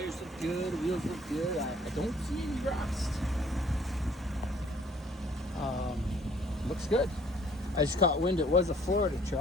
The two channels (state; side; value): normal; both; correlation 0.58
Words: look good, wheels look good. I don't see any rust. Looks good. I just caught wind it was a Florida